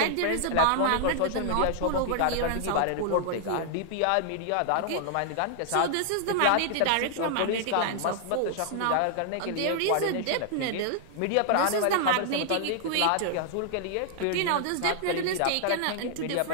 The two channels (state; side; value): different; both; correlation -0.01